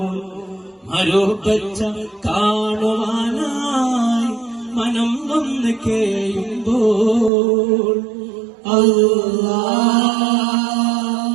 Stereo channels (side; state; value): left; drops out; at 7.3 s